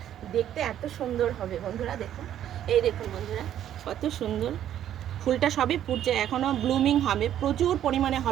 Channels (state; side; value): quieter; left; 11.0 dB